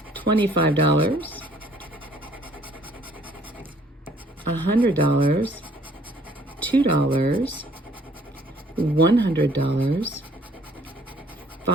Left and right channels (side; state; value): both; normal; correlation 0.60